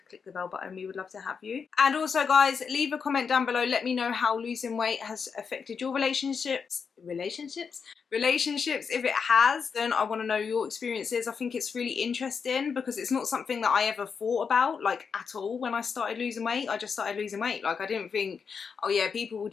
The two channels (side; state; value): right; quieter; 6.0 dB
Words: click the bell button. We would love to have you. And also guys, leave a comment down below, let me know how losing weight has affected your relationships. If it has, then I want to know your experiences. I think it's really interesting because it's not something that I ever thought about like at all when I started losing weight. I just started losing weight. Like I didn't think, oh yeah, people will